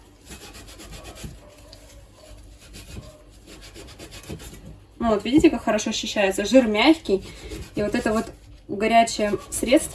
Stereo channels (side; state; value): both; identical; correlation 1.00